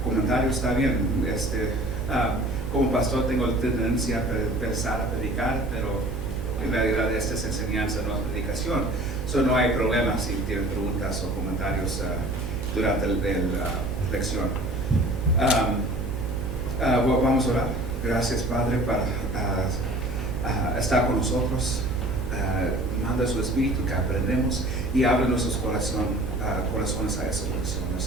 comentarios, está bien. Como pastor tengo la tendencia a pensar, a predicar, pero en realidad esta es enseñanza, no es predicación. No hay problema si tienen preguntas o comentarios durante la lección. Vamos a orar. Gracias, Padre, para estar con nosotros. Manda su Espíritu que aprendemos y abre nuestros corazones a esas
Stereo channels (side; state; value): right; noise; hum, 8 dB below the sound